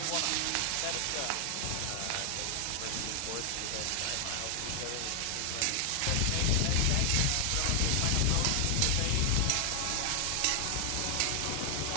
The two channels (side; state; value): both; different; correlation 0.00